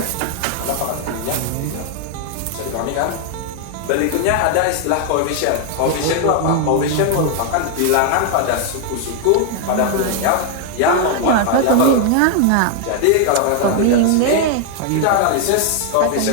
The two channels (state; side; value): different; both; correlation 0.00